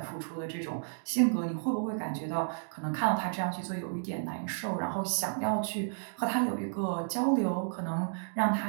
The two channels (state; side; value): silent; left; digital silence